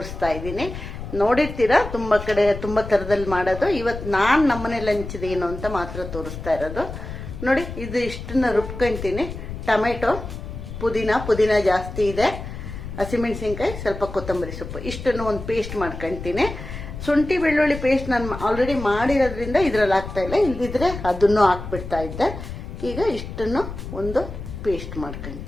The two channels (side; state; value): left; noise; rumble, 9 dB below the sound